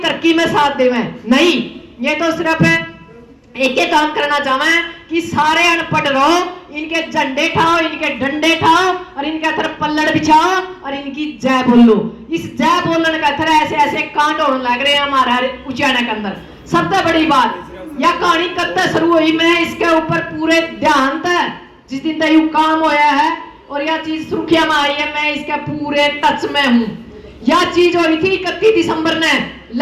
में साथ देवें, नहीं, ये तो सिर्फ एक ही काम करना चाहे कि सारे अनपढ़ रहो, इनके झंडे ठाओ, इनके डंडे ठाओ और इनके तरफ पल्लड़ बिछाओ और इनकी जय बोलो। इस जय बोलने का तरह ऐसे ऐसे कांड होने लग रहे हैं हमारे उचाना के अंदर। सबसे बड़ी बात, यह कहानी कब तक शुरू हुई, मैं इसके ऊपर पूरे ध्यान था जिस दिन तक यू काम होया है और यह चीज सुर्खिया में आई है, मैं इसके पूरे टच में हूँ। यह चीज हुई थी 31 दिसंबर ने,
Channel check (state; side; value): identical; both; correlation 1.00